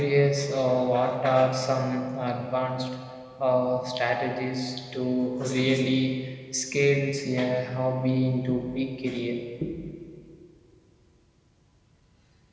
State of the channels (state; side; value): identical; both; correlation 1.00